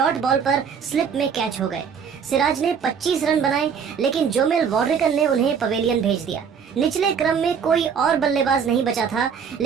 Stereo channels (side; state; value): left; quieter; 6.9 dB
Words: बॉल पर स्लिप में कैच हो गए। सिराज ने 25 रन बनाए, लेकिन जोमेल वॉर्रिकन ने उन्हें पवेलियन भेज दिया। निचले क्रम में कोई और बल्लेबाज नहीं बचा था,